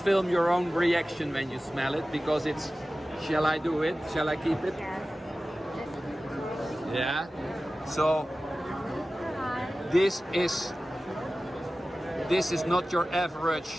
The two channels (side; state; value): both; normal; correlation 0.96